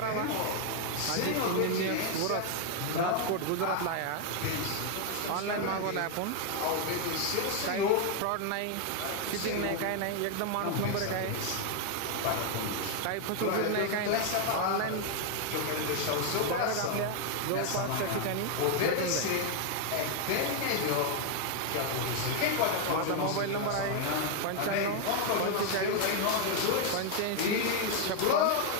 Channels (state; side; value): different; both; correlation 0.01